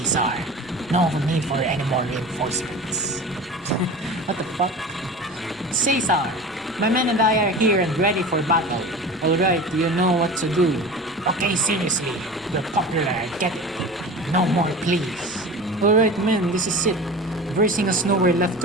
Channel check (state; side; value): normal; both; correlation 0.34